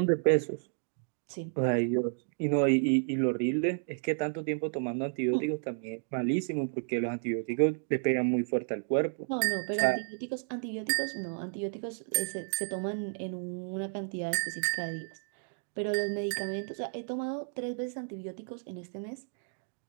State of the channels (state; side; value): silent; left; digital silence